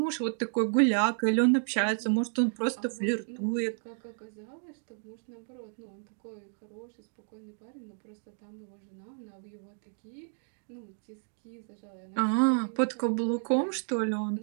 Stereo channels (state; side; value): silent; left; digital silence